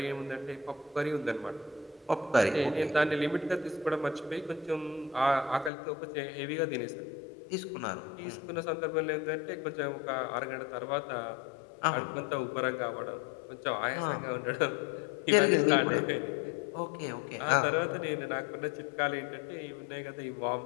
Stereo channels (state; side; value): drops out; right; at 5.7 s